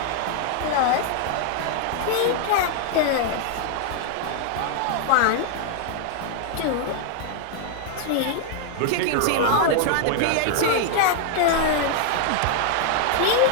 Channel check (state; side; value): different; both; correlation 0.00